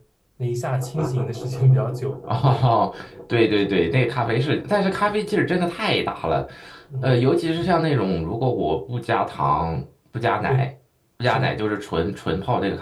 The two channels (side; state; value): both; identical; correlation 1.00